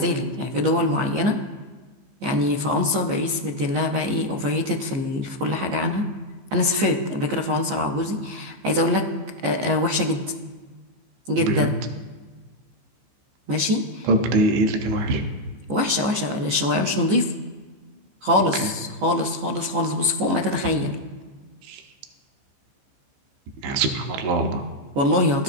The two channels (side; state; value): left; late; 15 ms